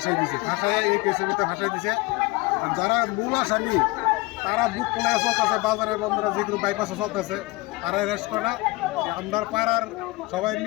দিছে, ফাঁসাই এই কেসের ভিতরে ফাঁসাই দিছে। আর যারা মূল আসামি তারা বুক খোলা চলতেছে, বাজারে বন্ধুরা যেগুলো বাইপাসে চলতেছে তারা অ্যারেস্ট করা। আমরা পাড়ার সবাই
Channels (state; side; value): quieter; right; 22.7 dB